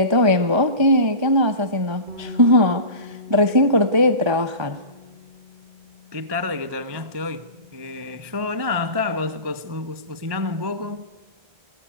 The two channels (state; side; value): late; left; 1.2 ms